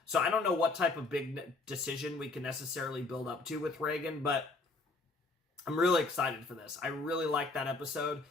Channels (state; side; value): quieter; right; 3.4 dB